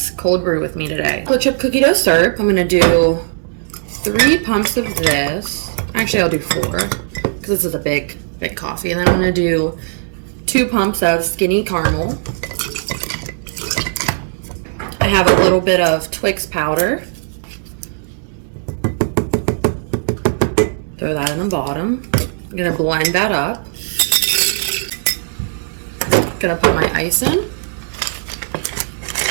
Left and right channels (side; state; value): left; silent; digital silence